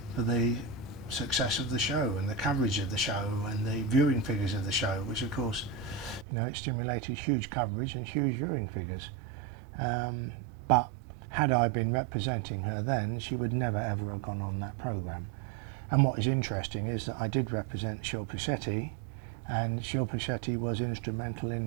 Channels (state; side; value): drops out; left; at 6.2 s